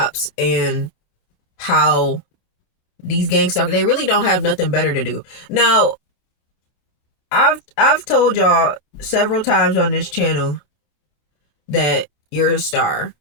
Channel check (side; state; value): right; late; 27 ms